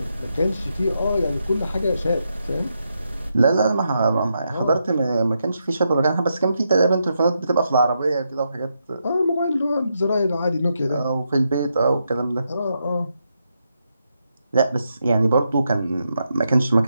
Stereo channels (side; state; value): both; inverted; correlation -0.83